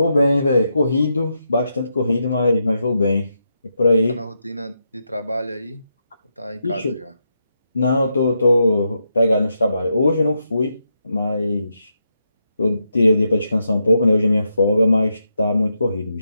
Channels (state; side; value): inverted; both; correlation -0.83